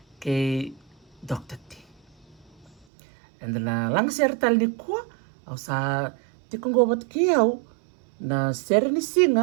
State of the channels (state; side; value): drops out; left; at 2.9 s